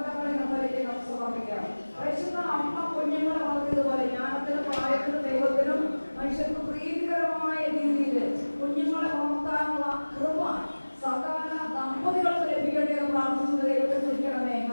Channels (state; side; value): inverted; both; correlation -1.00